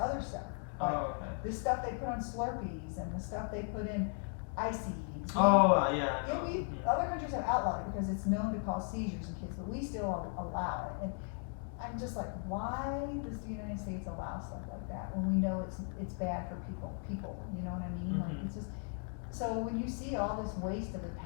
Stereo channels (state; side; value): quieter; right; 39.6 dB